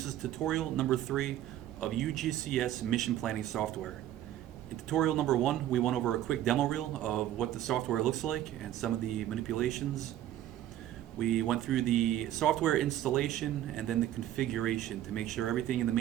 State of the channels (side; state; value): left; quieter; 12.4 dB